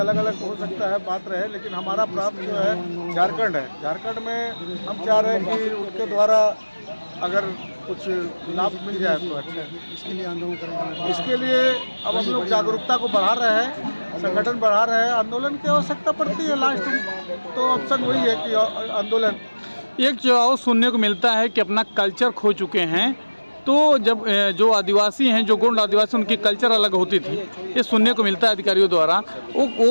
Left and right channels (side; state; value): both; inverted; correlation -1.00